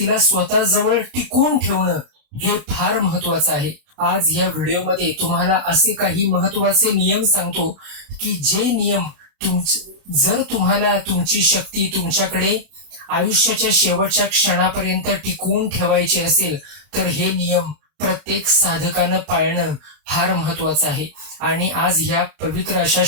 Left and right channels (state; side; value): late; left; 32 ms